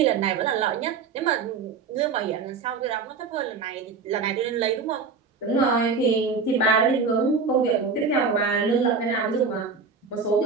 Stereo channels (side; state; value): left; quieter; 5.0 dB